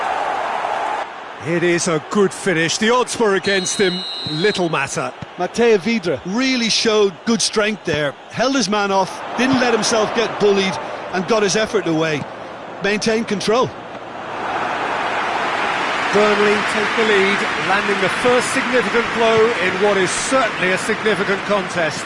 It is a good finish. The odds were against him, little matter. Matej Vidra really showed good strength there. Held his man off, didn't let himself get bullied, and got his effort away. Maintained control. Burnley take the lead, landing the first significant blow in what is certainly a significant contest.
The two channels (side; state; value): both; identical; correlation 1.00